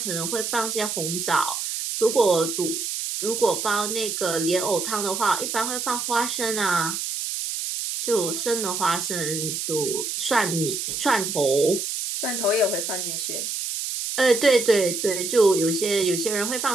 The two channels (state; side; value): noise; right; hiss, 3 dB below the sound